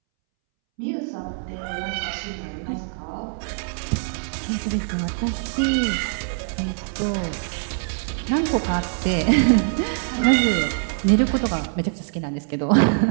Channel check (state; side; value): silent; left; 63 dB below the other